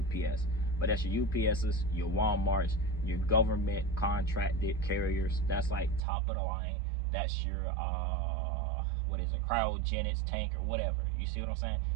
but that's your UPSs, your Walmarts, your government contracted carriers. That's like top of the line. That's your what is it, cryogenics tank or whatever. You see what I'm saying?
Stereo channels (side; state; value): left; drops out; at 6.0 s